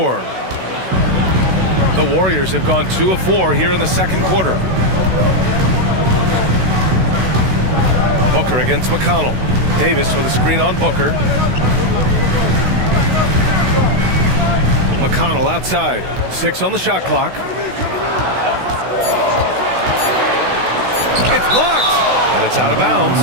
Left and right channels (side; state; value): left; late; 16 ms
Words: The Warriors have gone 2 of 4 here in the second quarter. Booker against McConnell. Davis with a screen on Booker. McConnell outside. 6 on the shot clock. It's blocked. And it's out of bounds.